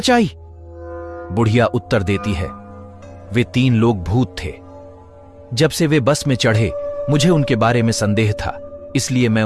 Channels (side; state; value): both; identical; correlation 1.00